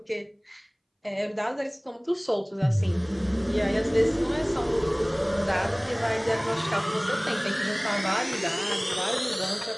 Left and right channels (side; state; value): both; identical; correlation 1.00